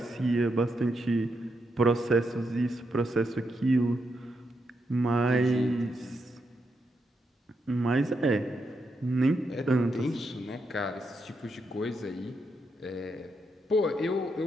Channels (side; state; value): both; normal; correlation 0.82